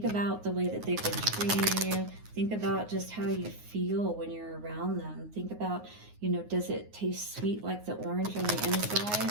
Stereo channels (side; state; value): left; late; 9.5 ms